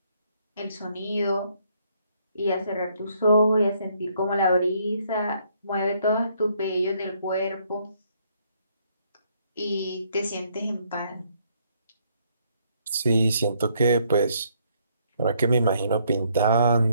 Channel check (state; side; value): inverted; both; correlation -0.69